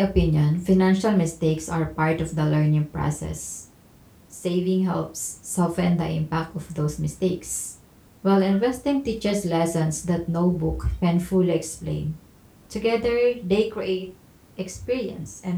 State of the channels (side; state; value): both; identical; correlation 1.00